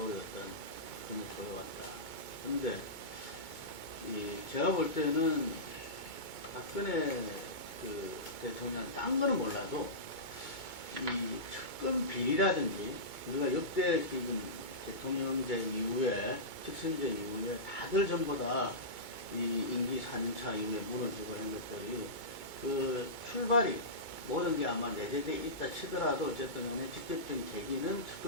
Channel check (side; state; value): right; late; 2.2 ms